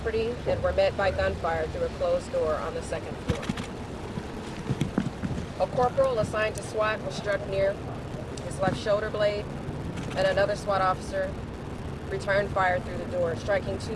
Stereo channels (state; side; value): identical; both; correlation 1.00